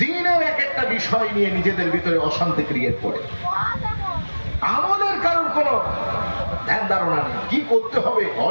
এক একটা বিষয় নিয়ে নিজেদের ভিতরে অশান্তি ক্রিয়েট করে। আমলের কারোর কোনো ধ্যান ধারণা নেই, কি করতে হবে,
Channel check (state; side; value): inverted; both; correlation -1.00